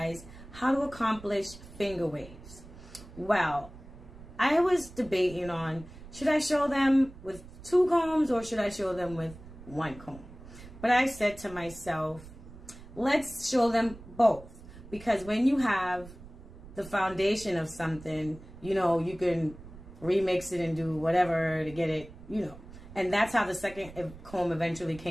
how to accomplish finger waves. Well, I was debating on, should I show them with 2 combs or should I show them with 1 comb? But I said to myself, let's show them both. Because when you have the foundation of something, you know, you can remix it and do whatever to get it, you know. And that's how the second comb eventually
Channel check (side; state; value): right; noise; rumble, 17 dB below the sound